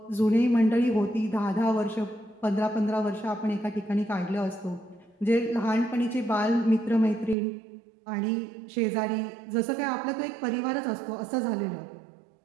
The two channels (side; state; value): left; drops out; at 7.4 s